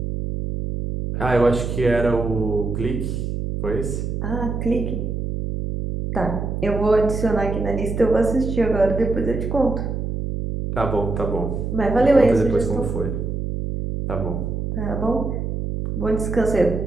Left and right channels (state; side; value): noise; right; hum, 3 dB below the sound